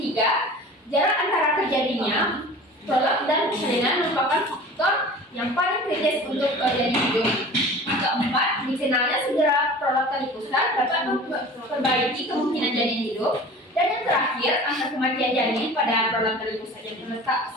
jarak antara terjadinya prolap dan persalinan merupakan faktor yang paling kritis untuk janin hidup. Keempat, dikenalnya segera prolap tali pusat dapat memperbaiki kemungkinan janin hidup. Dan yang terakhir, angka kematian janin pada prolap tali pusat yang terletak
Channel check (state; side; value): normal; both; correlation 0.40